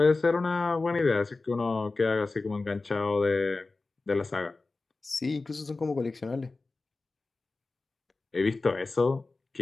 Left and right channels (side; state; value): right; quieter; 3.6 dB